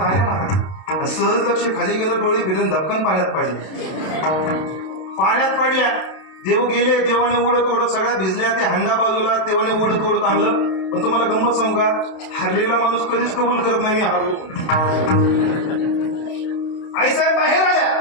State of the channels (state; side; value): late; right; 32 ms